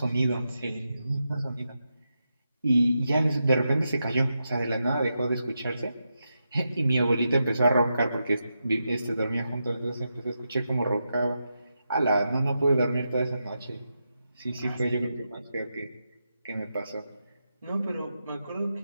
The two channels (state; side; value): inverted; both; correlation -0.87